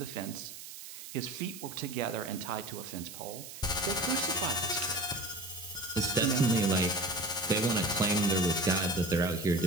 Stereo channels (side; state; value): right; noise; hiss, 13 dB below the sound